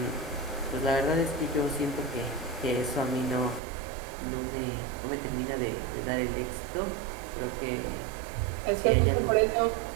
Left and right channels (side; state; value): left; drops out; at 3.6 s